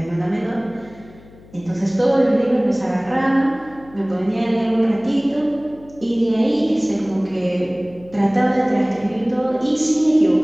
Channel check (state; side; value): noise; left; hum, 23 dB below the sound